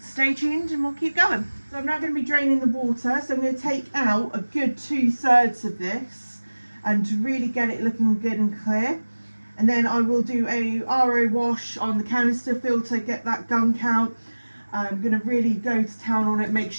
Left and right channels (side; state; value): both; inverted; correlation -1.00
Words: tuned and we'll keep going. So I'm now going to be draining the water. So I'm going to take out a good 2/3 of this and to really get it looking good and clear. And then I will do a RO wash on the canister filter, get that gunk out. I'm going to really go to town on it, make